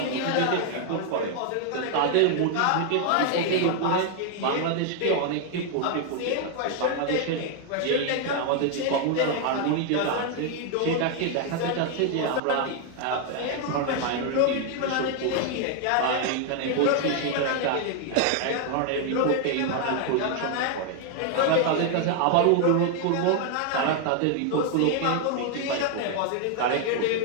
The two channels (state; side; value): different; both; correlation 0.00